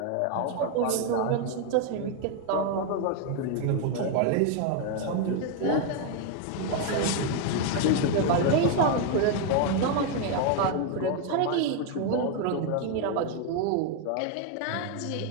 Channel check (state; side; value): different; both; correlation 0.01